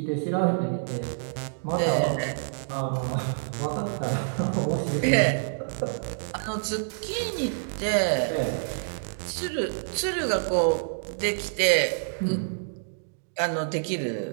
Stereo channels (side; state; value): left; silent; digital silence